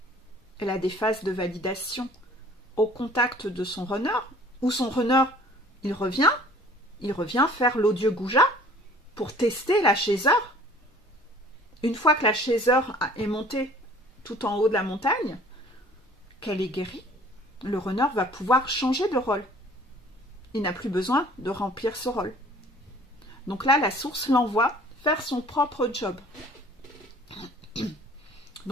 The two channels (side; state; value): both; normal; correlation 0.51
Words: elle a des phases de validation au contact de son runner, où son runner, il revient faire l'odieux goujat pour tester la chasseur. Une fois que la chasseur est montée tout en haut de la montagne, qu'elle est guérie, le runner va pouvoir changer de rôle. Il n'a plus besoin de remplir ce rôle. Donc là, la source l'envoie faire son propre job.